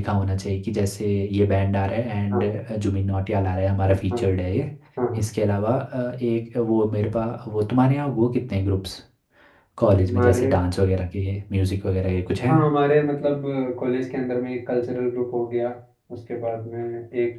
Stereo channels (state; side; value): identical; both; correlation 1.00